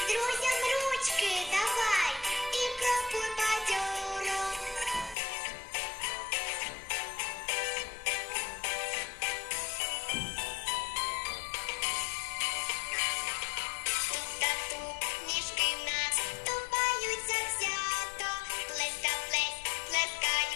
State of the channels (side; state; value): right; drops out; at 5.2 s